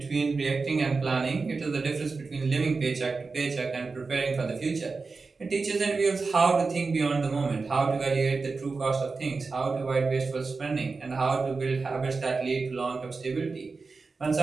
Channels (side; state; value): left; quieter; 4.2 dB